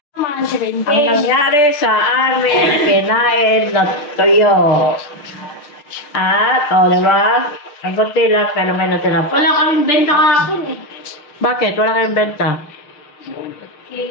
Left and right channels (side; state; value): right; late; 6.9 ms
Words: Naman si Ang nangyari sa amin, kinain na tuyo. At, diba? Ang konti lang ka naman na tinapos. Wala kaming benta kahapon eh. Bakit? Wala kayong benta?